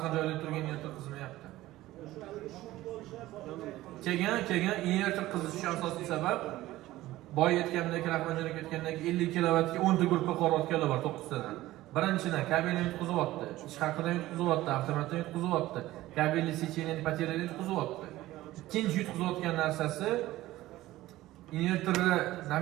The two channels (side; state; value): left; quieter; 16.4 dB